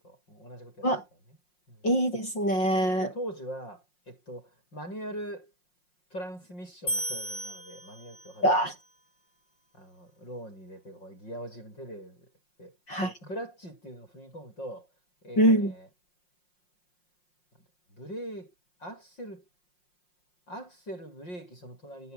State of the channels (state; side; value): late; right; 5.6 ms